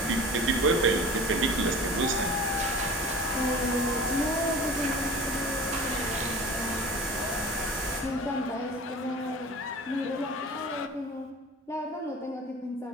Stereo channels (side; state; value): both; normal; correlation 0.39